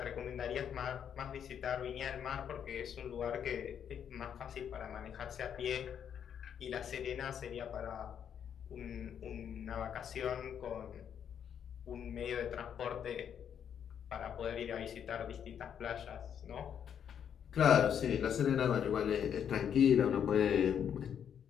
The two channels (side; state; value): right; quieter; 8.5 dB